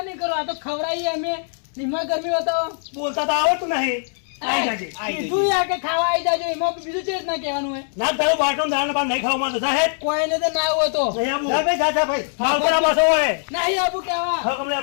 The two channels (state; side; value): silent; right; 64 dB below the other